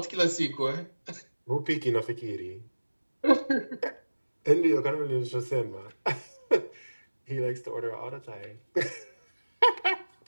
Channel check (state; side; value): inverted; both; correlation -1.00